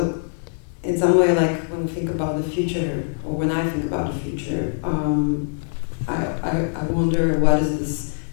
in some way, like when we think about the future, or when I think about the future, I wonder what is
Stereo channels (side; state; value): right; silent; digital silence